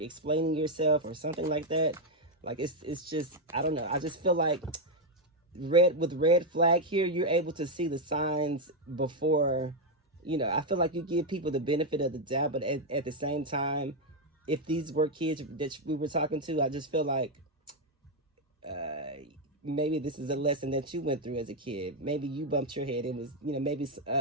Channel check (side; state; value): both; normal; correlation 0.02